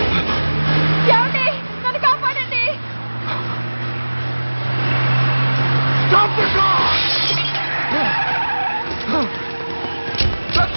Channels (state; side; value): inverted; both; correlation -1.00